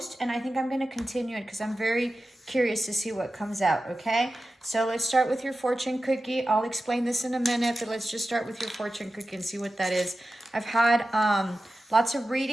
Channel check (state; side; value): normal; both; correlation 0.93